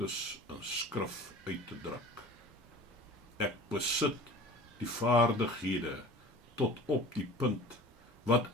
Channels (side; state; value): both; normal; correlation 0.41